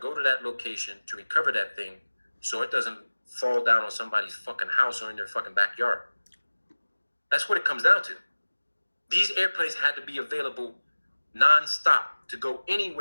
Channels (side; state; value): both; inverted; correlation -1.00